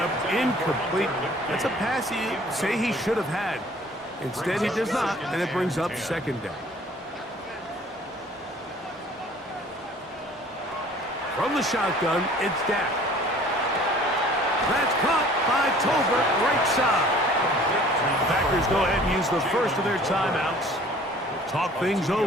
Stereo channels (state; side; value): normal; both; correlation 0.51